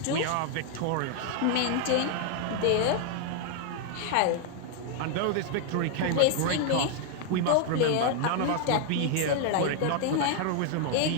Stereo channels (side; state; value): both; different; correlation 0.00